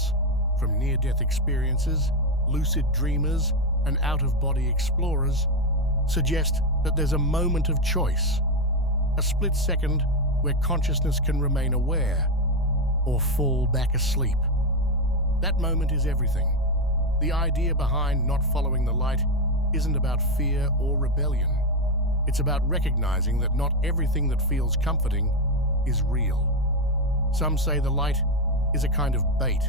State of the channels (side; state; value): both; normal; correlation 0.09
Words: from near-death experiences, lucid dreamers, and out-of-body explorers, suggest that there's a moment of choice, a split second where consciousness can remain aware or fall back asleep. That moment is everything. The idea behind not following the light isn't about fear or rebellion. It's about recognizing that not everything that feels comforting is real. Some say the light is a kind of bait,